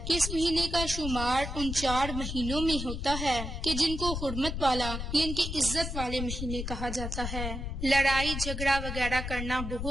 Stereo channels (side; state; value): left; noise; rumble, 5 dB below the sound